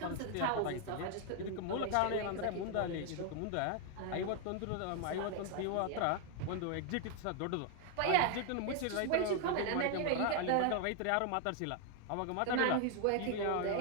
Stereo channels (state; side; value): different; both; correlation 0.00